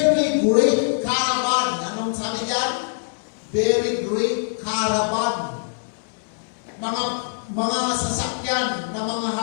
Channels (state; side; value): silent; right; digital silence